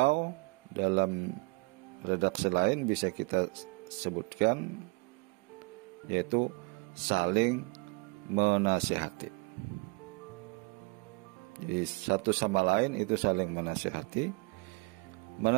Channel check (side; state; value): left; quieter; 28.6 dB